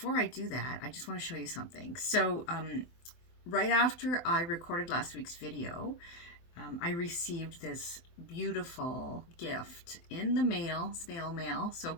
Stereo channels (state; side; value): late; right; 23 ms